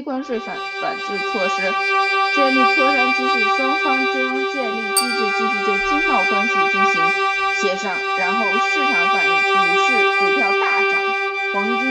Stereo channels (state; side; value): identical; both; correlation 1.00